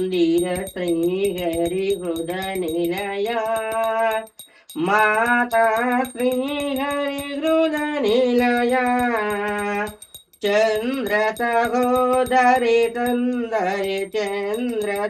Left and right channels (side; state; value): both; identical; correlation 1.00